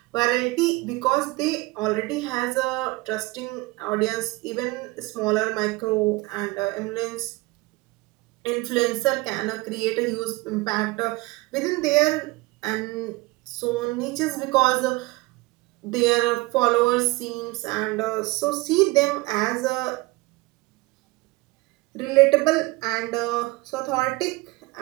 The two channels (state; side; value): quieter; left; 22.7 dB